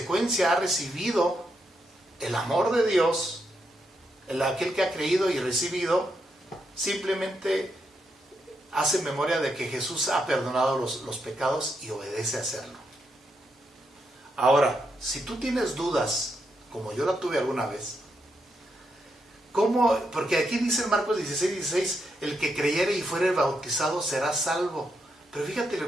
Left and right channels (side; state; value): both; normal; correlation 0.81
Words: ha recibido el amor de Dios, aquel que ha creído y recibido, simplemente hace memoria de que Jesús ha perdonado los pecados y obedece a hacerlo. Ahora, si tú tienes dudas, como yo la tuve alguna vez, ¿cómo? Porque aquí dice en Marcos 16:16, el que creyere y fuere bautizado será salvo. Pero fíjate